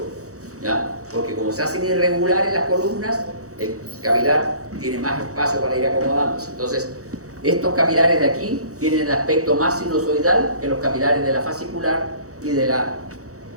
¿ya? Porque como se hacen irregulares las columnas, el capilar tiene más espacio para ir acomodándose. Entonces, estos capilares de aquí tienen el aspecto más sinusoidal que los capilares de la fascicular y de la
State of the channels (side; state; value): left; late; 0.65 ms